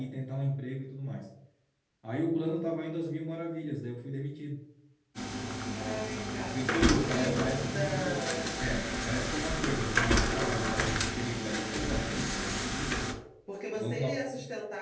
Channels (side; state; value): both; identical; correlation 1.00